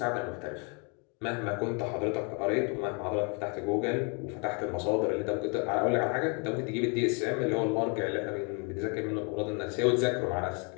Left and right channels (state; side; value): quieter; right; 34.8 dB